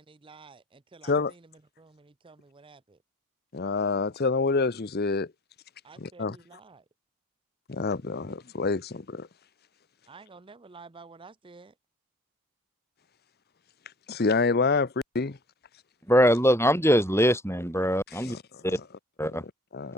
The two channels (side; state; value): both; normal; correlation 0.45